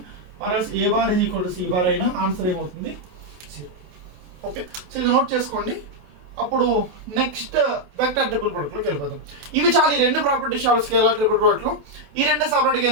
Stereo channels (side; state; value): left; late; 28 ms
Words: or else A bar is equal to C bar అయినా ఆన్సర్ ఏమవుతుంది? 0. ఓకే, సో ఇది నోట్ చేసుకోండి. అప్పుడు నెక్స్ట్ వెక్టర్ ట్రిపుల్ ప్రొడక్ట్లోకి వెళ్ళిపోతాం. ఇవి చాలా ఈ రెండు ప్రాపర్టీస్ చాలా స్కేలార్ ట్రిపుల్ ప్రొడక్ట్లో. ఈ రెండే సపరేట్గా